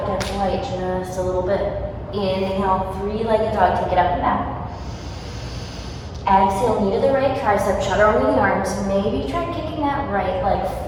gets light just a little bit. Inhale, three-legged dog, take it up and back. Exhale, knee to the right tricep, shudder over the arms. Maybe try kicking that right leg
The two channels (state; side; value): identical; both; correlation 1.00